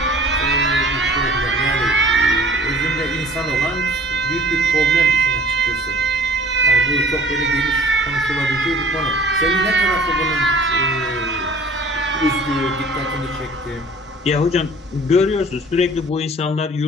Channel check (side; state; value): both; normal; correlation 0.48